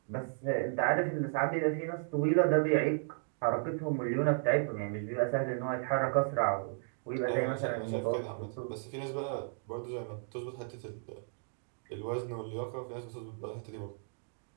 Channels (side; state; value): left; silent; 55 dB below the other